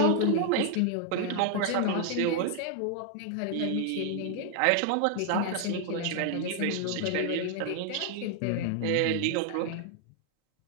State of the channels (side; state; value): both; different; correlation 0.00